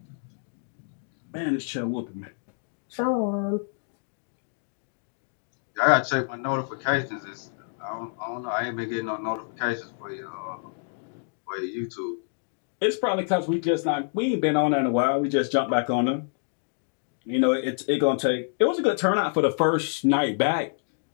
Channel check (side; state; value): right; silent; digital silence